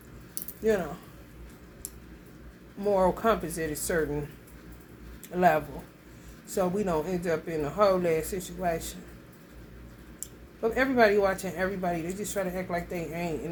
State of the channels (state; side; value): identical; both; correlation 1.00